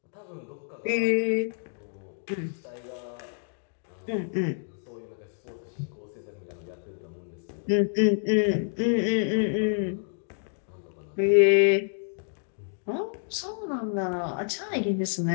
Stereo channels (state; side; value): silent; right; digital silence